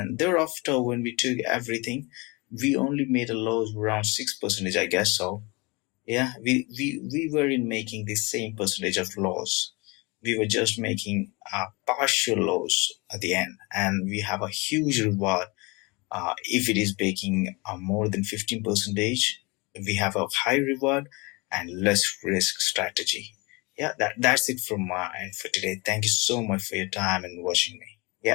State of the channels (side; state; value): right; quieter; 26.8 dB